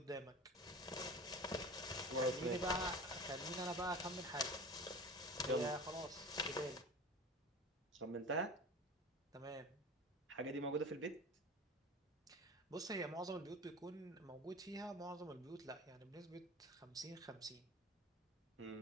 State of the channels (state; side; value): normal; both; correlation 0.35